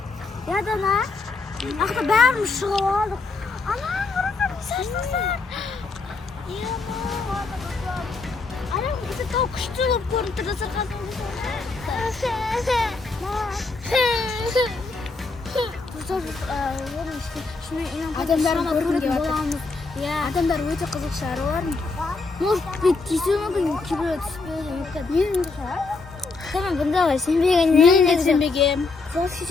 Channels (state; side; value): quieter; right; 3.9 dB